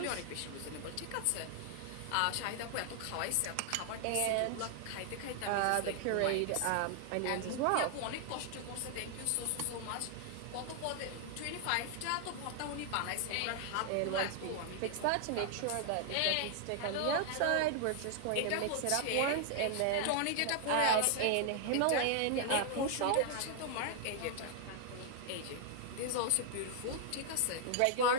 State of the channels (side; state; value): both; different; correlation 0.00